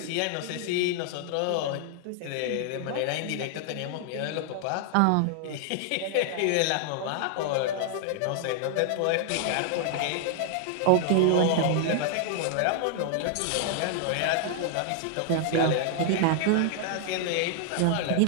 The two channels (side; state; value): both; different; correlation 0.00